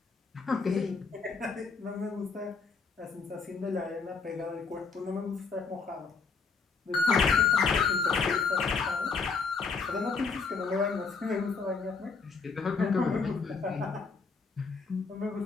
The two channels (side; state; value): right; quieter; 4.9 dB